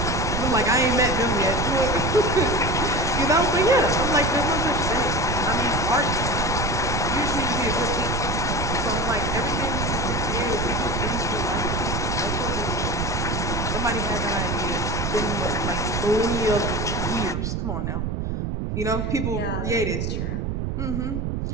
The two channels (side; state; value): right; noise; rumble, 1 dB below the sound